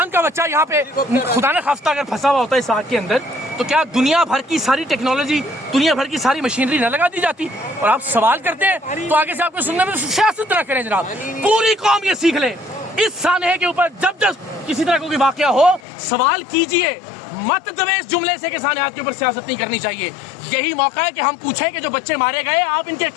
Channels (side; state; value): right; drops out; at 15.8 s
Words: का बच्चा यहाँ पे खुदा न खास्ता अगर फंसा हुआ होता है इस आग के अंदर, तो क्या दुनिया भर की सारी टेक्नोलॉजी, दुनिया भर की सारी मशीनरी न लगा दी जाती? और आप सवाल करते हैं तो आगे से आपको सुनने में सियासत न करें जनाब। पूरी कौम ये सीख ले, इस सानहे के ऊपर जब जब किसी तरह का कोई वाकया हो सवाल कीजिए, मत दबे इस जुमले से कि सानहात के ऊपर सियासत नहीं करनी चाहिए। यही मौका है कि हम पूछें कि जो बच्चे मारे गए आप इनके